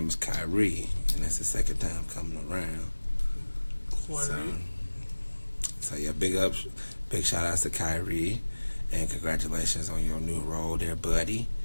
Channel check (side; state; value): both; inverted; correlation -1.00